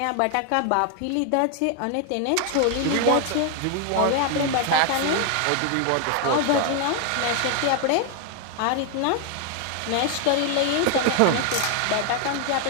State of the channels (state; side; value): different; both; correlation 0.00